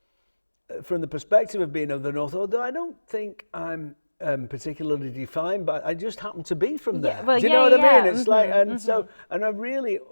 perspective of being of the north, although I don't think I'm particularly defined, but I just happen to be from there. Well, do you know what I mean? It's like, and so, and I really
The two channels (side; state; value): both; inverted; correlation -1.00